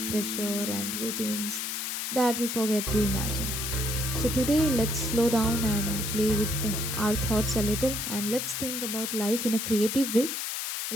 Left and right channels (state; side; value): noise; left; hiss, 3 dB below the sound